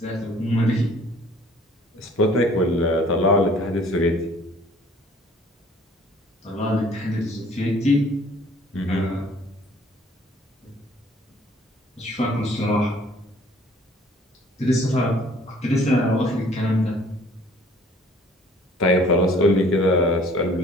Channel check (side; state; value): both; normal; correlation 0.55